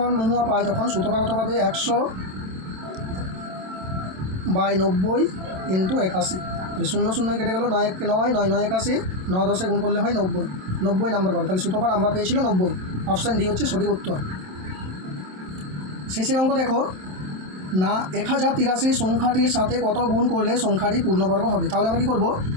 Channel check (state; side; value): late; left; 27 ms